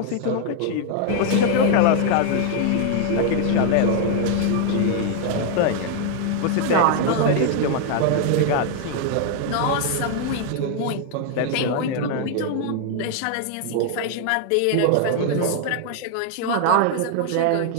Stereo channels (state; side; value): different; both; correlation 0.00